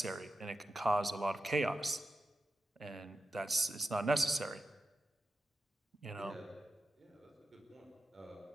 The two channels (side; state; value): both; normal; correlation 0.90